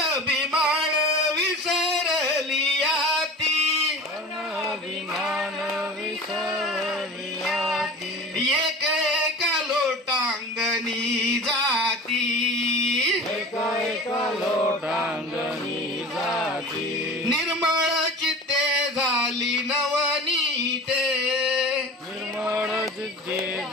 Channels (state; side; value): normal; both; correlation 0.37